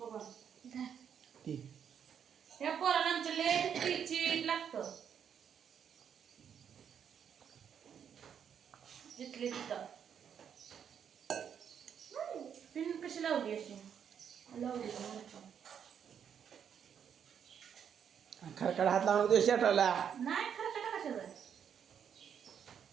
ती या पोराला आमच्या लय चिट लागतं. जिथले तिथं पिन कशी लावली अशी लावली खडखड हात लावून दे शर्टाला. नाही खरं का कशाचं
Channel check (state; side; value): quieter; left; 8.1 dB